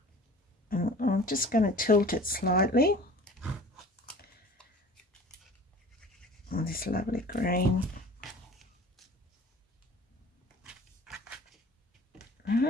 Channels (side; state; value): both; normal; correlation 0.44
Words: and I'm just going to tilt it slightly. And this lovely green.